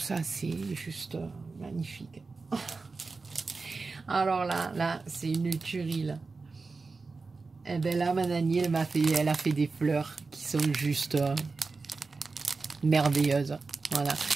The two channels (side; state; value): left; quieter; 4.1 dB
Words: c'est juste magnifique. Alors là, c'est une tuerie là. Et bien là, ma Nanny, elle a fait des fleurs qui sont juste... merveilleuse, voilà.